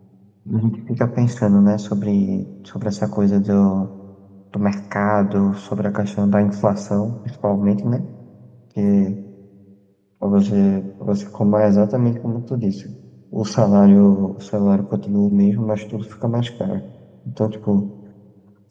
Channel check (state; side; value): identical; both; correlation 1.00